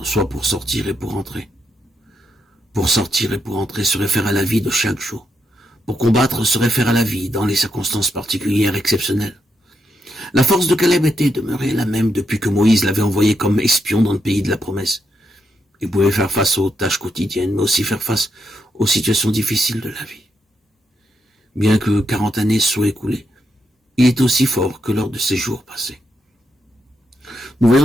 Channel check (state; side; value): normal; both; correlation 0.81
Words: soit pour sortir et pour entrer. Pour sortir et pour entrer se réfère à la vie de chaque jour. Pour combattre se réfère à la vie dans les circonstances particulières exceptionnelles. La force de Caleb était demeurée la même depuis que Moïse l'avait envoyé comme espion dans le pays de la promesse. Il pouvait faire face aux tâches quotidiennes, mais aussi faire face aux situations difficiles de la vie. Bien que 40 années soient écoulées, il est aussi fort que lors de ces jours passés. Nous